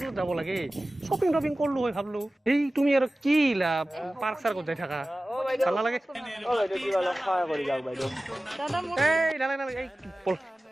যাব লাগে শ্বপিং কৰিলো হয় ভাবলো এই তুমি আৰু কি ইলা পাৰ্ক চাৰ্কত যাই থাকা ভাল লাগে সহায় কৰি যাওক বাইদেউ এই নালাগে এই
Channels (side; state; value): both; normal; correlation 0.96